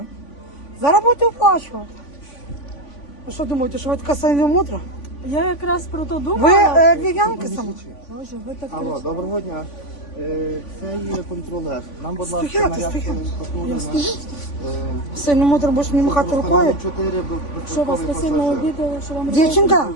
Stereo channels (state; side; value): late; right; 3.5 ms